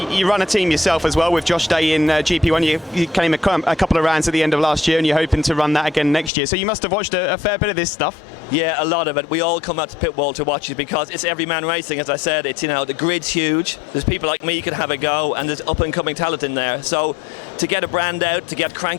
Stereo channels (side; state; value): right; drops out; at 6.3 s